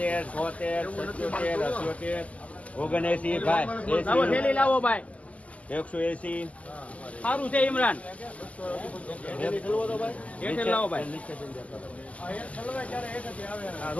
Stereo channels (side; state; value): right; late; 0.070 ms